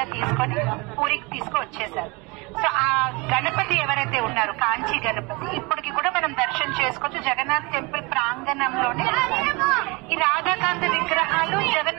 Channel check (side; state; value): left; quieter; 27.0 dB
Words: తీసుకొని పూరికి తీసుకొచ్చేశారు. సో ఆ గణపతి ఎవరైతే ఉన్నారో కాంచి గణపతి ఇప్పటికి కూడా మనం దర్శనం చేసుకోవచ్చు జగన్నాథ్ టెంపుల్ ప్రాంగణంలోనే. ఈ రాధాకాంత విగ్రహాలు